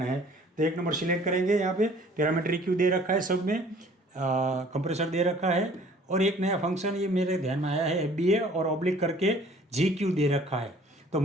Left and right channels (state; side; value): normal; both; correlation 0.53